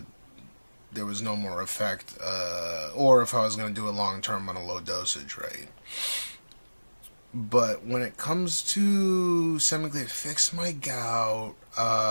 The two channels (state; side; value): inverted; both; correlation -1.00